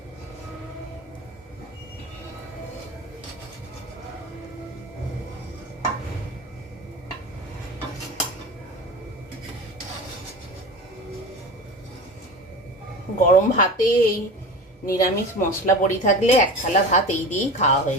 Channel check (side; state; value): both; normal; correlation 0.32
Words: গরম ভাতে এই নিরামিষ মশলা বড়ি থাকলে 1 থালা ভাত এই দিয়েই খাওয়া